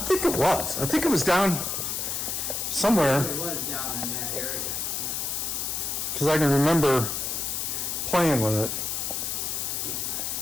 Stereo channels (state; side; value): noise; left; hiss, 2 dB below the sound